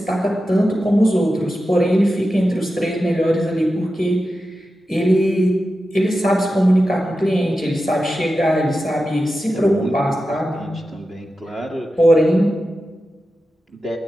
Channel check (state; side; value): normal; both; correlation 0.92